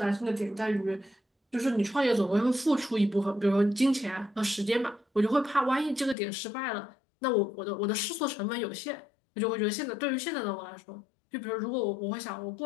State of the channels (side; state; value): right; drops out; at 6.2 s